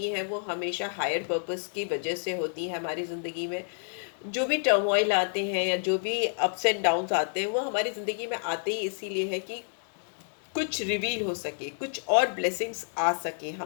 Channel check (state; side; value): silent; right; digital silence